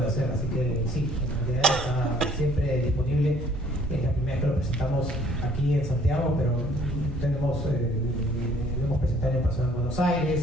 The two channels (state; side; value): normal; both; correlation 0.59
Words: hacer, así que sí, el material está siempre disponible. Es la primera vez que lo presentamos aquí en Santiago, pero lo hemos presentado en persona en Buenos